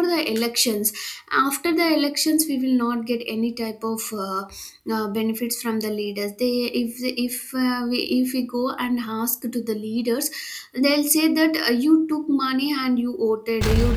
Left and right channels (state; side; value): identical; both; correlation 1.00